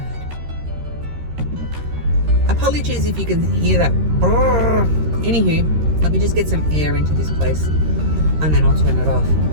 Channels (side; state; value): left; late; 13 ms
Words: Apologies if you can hear that. Brrr. Anywho, let me just get some air into this place and then I'll turn it off.